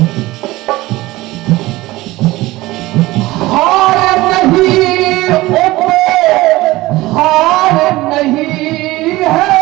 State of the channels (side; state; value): left; quieter; 18.9 dB